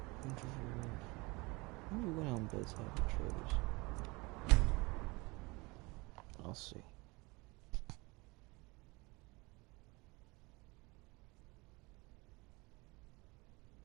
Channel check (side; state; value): left; quieter; 25.1 dB